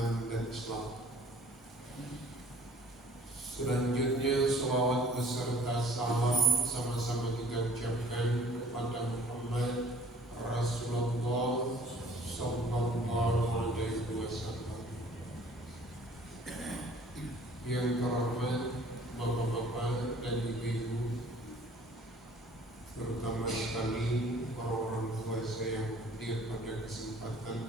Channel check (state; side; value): normal; both; correlation 0.53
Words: dan Islam. Selanjutnya salawat beserta salam sama-sama kita ucapkan kepada Muhammad Rasulullah Sallallahu Alaihi Wasallam. Yang terhormat bapak-bapak dan ibu-ibu, terutama sekali para orang tua saya yang hadir pada